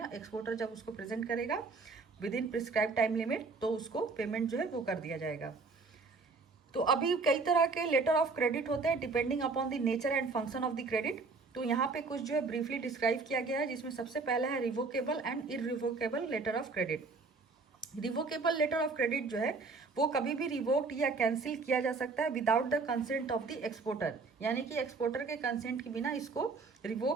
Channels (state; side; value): quieter; left; 4.1 dB